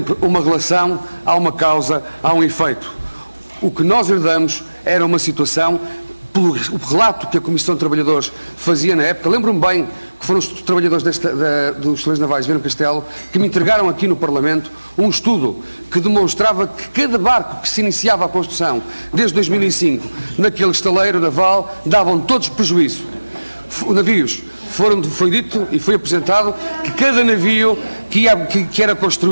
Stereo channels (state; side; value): inverted; both; correlation -1.00